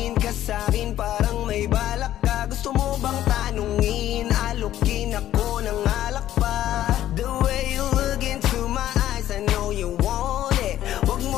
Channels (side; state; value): right; quieter; 12.6 dB